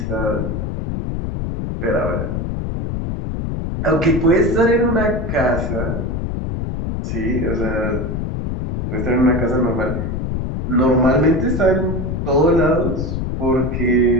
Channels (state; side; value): noise; left; rumble, 3 dB below the sound